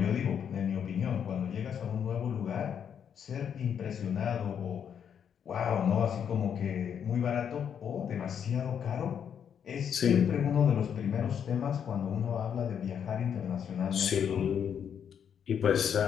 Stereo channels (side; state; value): right; quieter; 8.1 dB